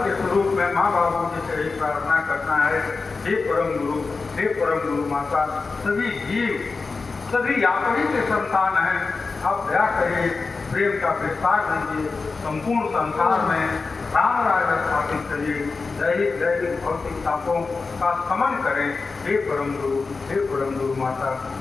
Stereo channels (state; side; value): quieter; right; 4.2 dB